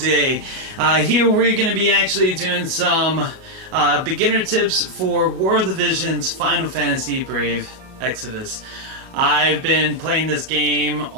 Here we're going to be actually doing some beginner tips for War of the Visions Final Fantasy Brave Exvius. I've been playing this game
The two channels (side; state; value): left; late; 38 ms